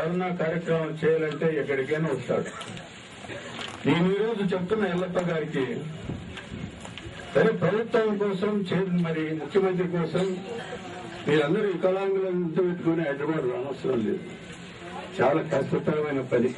కార్యక్రమం చేయాలంటే ఎక్కడికైనా వస్తాడు. నేను ఈరోజు చెప్తున్న ఎల్లప్ప గారికి, సరే ప్రభుత్వం కోసం మరి ముఖ్యమంత్రి కోసం మీరందరూ వికలాంగులంతా పెట్టుకుని హైదరాబాద్ రానవసరం లేదు. చాలా కష్టతరమైన పని.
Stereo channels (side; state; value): both; identical; correlation 1.00